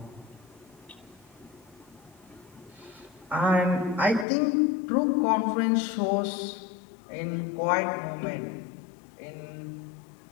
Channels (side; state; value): right; drops out; at 4.2 s